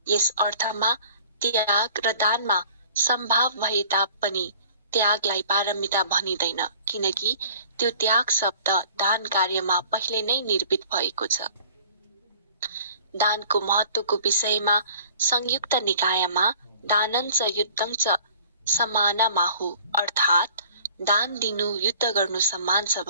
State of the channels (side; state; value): both; inverted; correlation -0.50